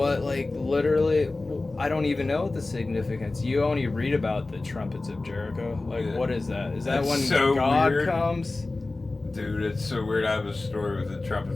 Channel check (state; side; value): quieter; right; 3.2 dB